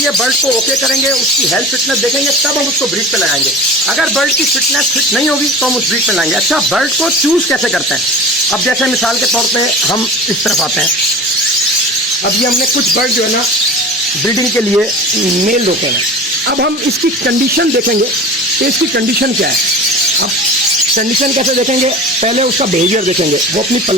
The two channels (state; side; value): normal; both; correlation 0.35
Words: बर्ड को ओके करेंगे, उसकी हेल्थ फिटनेस देखेंगे, तब हम उसको ब्रीड पे लगाएंगे। अगर बर्ड की फिटनेस फिट नहीं होगी तो हम उस ब्रीड पे लगाएंगे। अच्छा, बर्ड को चूज कैसे करते हैं? अब जैसे मिसाल के तौर पे हम इस तरफ आते हैं, अब ये हमने कुछ बर्ड जो है ना ब्रीडिंग के लिए मेल रोके हैं। अब हम इसकी कंडीशन देखेंगे कि इसकी कंडीशन क्या है। अब कंडीशन कैसे देखेंगे? पहले उसका बिहेवियर देखेंगे, वो अपनी